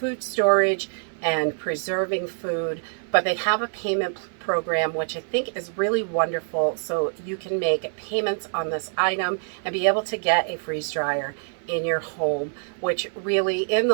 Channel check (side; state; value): left; silent; 62 dB below the other